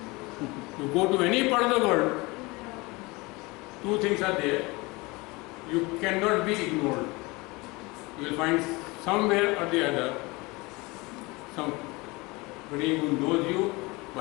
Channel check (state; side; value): quieter; right; 24.3 dB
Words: You go to any part of the world, 2 things are there. You cannot be ignored. You will find somewhere or the other somebody who knows you